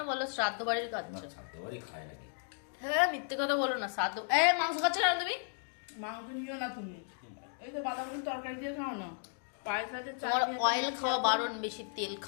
বলো, শ্রাদ্ধ বাড়ির না, খাচ্ছ। ছাদ্য বাড়ি খায় নাকি? হ্যাঁ, মিথ্যে কথা বলো না। শ্রাদ্ধ মাংস খাচ্ছ না তুমি? মাংস নিও না তুমি। এই তো বাঁধাকপির তরকারি দিয়ে খাও না, পায়ের সাথে চাল তোমার দিয়ে অয়েল খাওয়া বারণ, বেশি তেল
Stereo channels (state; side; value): silent; right; 55 dB below the other